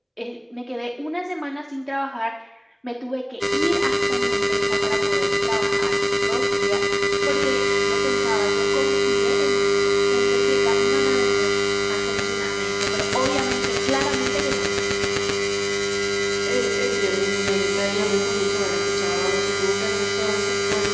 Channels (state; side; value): identical; both; correlation 1.00